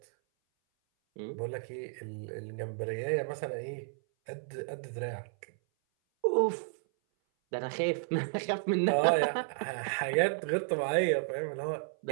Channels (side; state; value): left; silent; 56 dB below the other